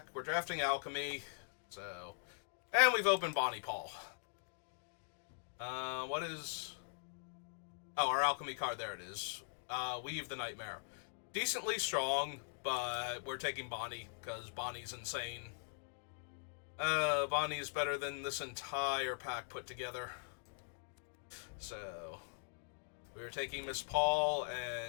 We're drafting Alchemy, so... And we've opened Bonnie Paul. What is... Oh, our Alchemy card, there it is. Weave the Nightmare. Decently strong, but we're taking Bonnie, because Bonnie's insane. Bonnie is better than this entire pack put together. So, we are taking Miss Paul,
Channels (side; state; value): right; silent; digital silence